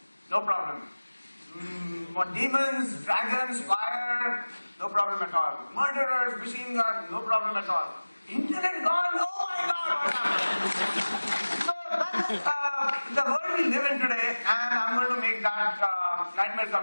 no problem. More demons, dragons, fire, no problem at all. Murderers, machine guns, no problem at all. Internet gone, oh my god, what happened? So that's the world we live in today, and I'm going to make that nightmare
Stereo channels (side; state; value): both; inverted; correlation -1.00